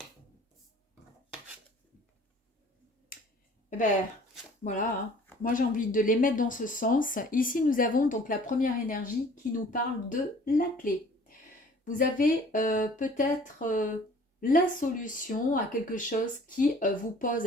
Eh ben, voilà, hein. Moi j'ai envie de les mettre dans ce sens. Ici, nous avons donc la première énergie qui nous parle de la clé. Vous avez peut-être la solution à quelque chose qui vous pose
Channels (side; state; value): both; normal; correlation 0.51